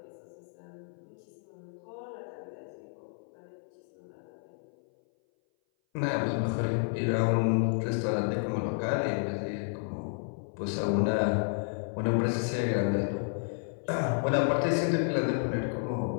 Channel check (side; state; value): right; silent; 57 dB below the other